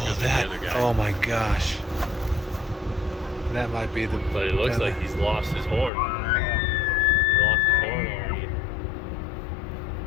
Oh my gosh. That might be the... But it looks like he's lost his horn. He lost his horn already.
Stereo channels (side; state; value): right; drops out; at 5.9 s